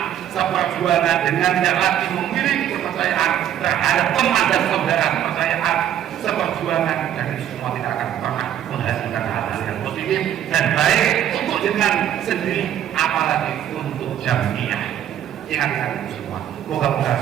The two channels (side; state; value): left; quieter; 10.6 dB